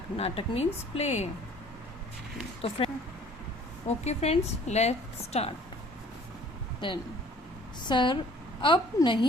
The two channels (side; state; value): both; normal; correlation 0.54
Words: Natak means play. So friends, let's start. Then sir अब